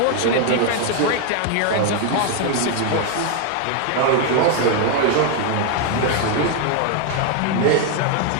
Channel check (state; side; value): different; both; correlation 0.01